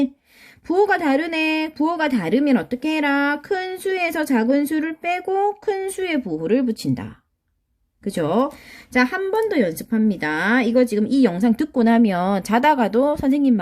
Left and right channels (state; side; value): identical; both; correlation 1.00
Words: 부호가 다르네. 부호가 다르면 어떻게 해라? 큰 수에서 작은 수를 빼고 큰 수에 부호를 붙인다. 그죠? 자, 한 번 더 연습합니다. 이거 지금 이 영상 듣고 나면 자다가도 선생님